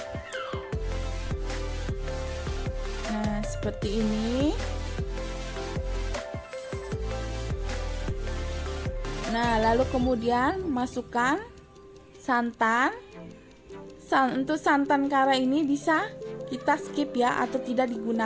Nah, seperti ini. Nah, lalu kemudian masukkan santan. Untuk santan kara ini bisa kita skip ya, atau tidak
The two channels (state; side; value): identical; both; correlation 1.00